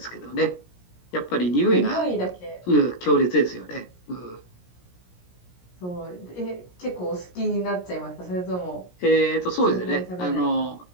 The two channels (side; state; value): right; late; 17 ms